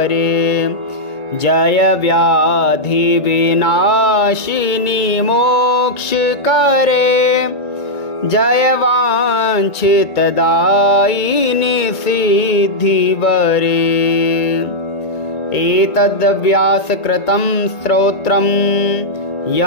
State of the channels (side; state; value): right; late; 1.9 ms